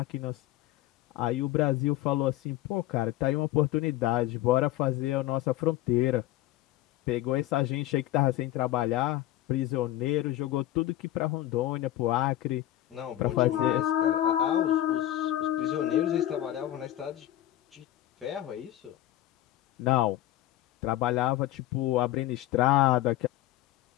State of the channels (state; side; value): quieter; right; 14.2 dB